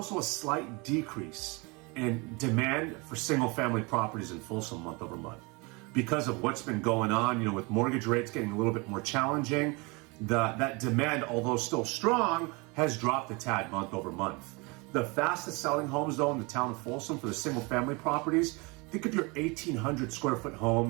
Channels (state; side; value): quieter; left; 27.9 dB